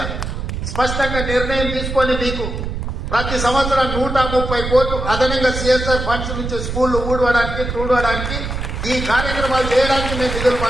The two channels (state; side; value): noise; right; rumble, 4 dB below the sound